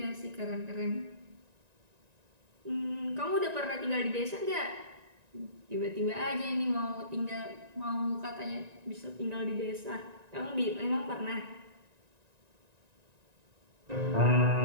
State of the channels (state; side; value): late; left; 1.9 ms